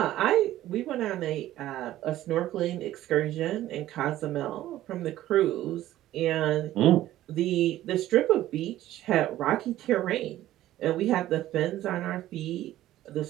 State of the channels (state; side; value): quieter; left; 14.2 dB